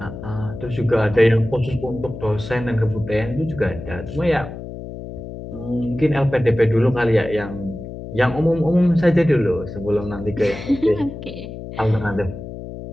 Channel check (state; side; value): noise; left; hum, 10 dB below the sound